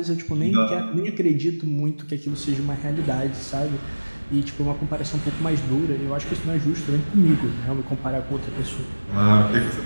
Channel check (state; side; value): inverted; both; correlation -1.00